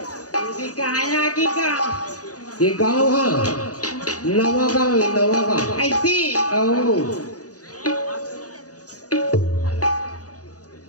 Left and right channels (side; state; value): right; late; 0.67 ms